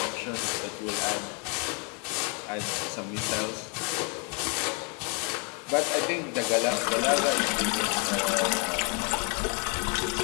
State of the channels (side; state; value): right; quieter; 35.5 dB